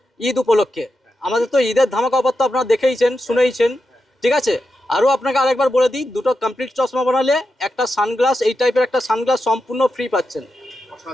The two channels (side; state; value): both; normal; correlation 0.88